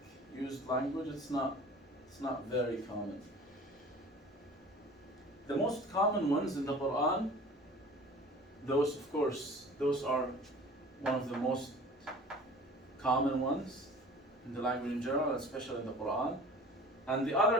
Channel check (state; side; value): normal; both; correlation 0.44